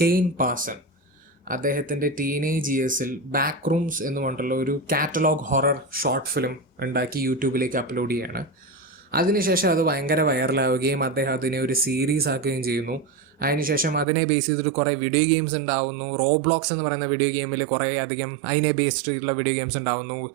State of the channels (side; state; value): left; drops out; at 14.1 s